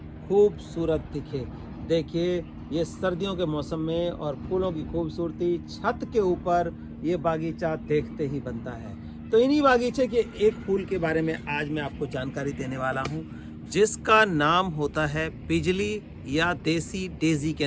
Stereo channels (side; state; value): both; identical; correlation 1.00